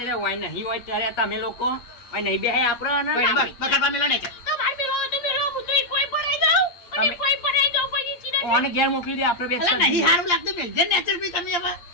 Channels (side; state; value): right; late; 8.6 ms